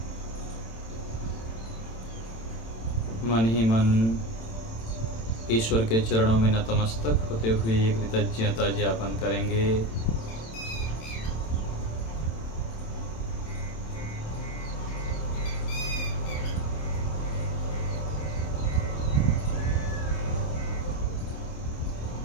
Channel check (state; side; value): late; right; 27 ms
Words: मन ही मन ईश्वर के चरणों में नतमस्तक होते हुए कृतज्ञता ज्ञापन करेंगे।